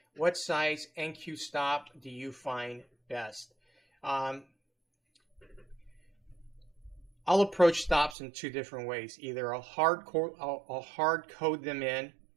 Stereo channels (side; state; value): left; drops out; at 8.2 s